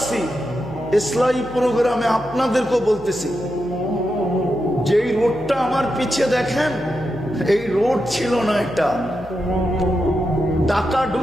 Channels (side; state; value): left; noise; hum, 19 dB below the sound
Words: ইসলামী প্রোগ্রামে আপনাদেরকেও বলতেছি, যেই রোডটা আমার পিছে দেখেন, এই রোড ছিল না, এটা ঢাকা